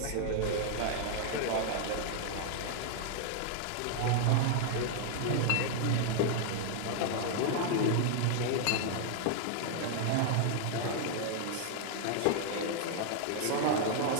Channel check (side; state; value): both; different; correlation 0.00